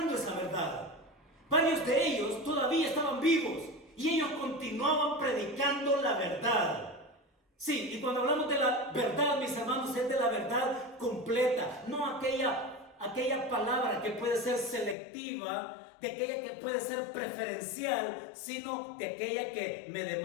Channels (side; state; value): right; drops out; at 15.0 s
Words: esa verdad. Varios de ellos todavía estaban vivos y ellos continuaban predicando la verdad. Sí, y cuando hablamos de la verdad, mis hermanos, es de la verdad completa, no aquella palabra que puede ser selectiva, de aquella que puede ser preferencial, sino de aquella que me